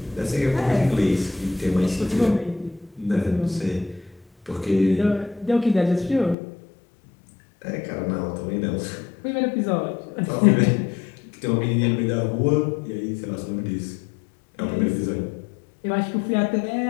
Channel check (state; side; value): drops out; right; at 6.4 s